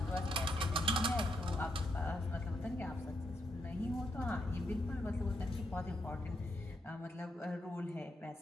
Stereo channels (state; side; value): normal; both; correlation 0.79